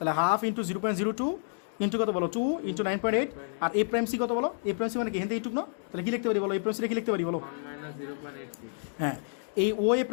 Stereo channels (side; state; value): right; silent; digital silence